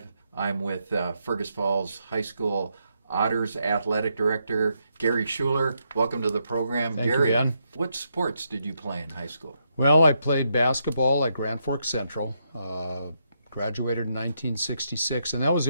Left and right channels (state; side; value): inverted; both; correlation -0.79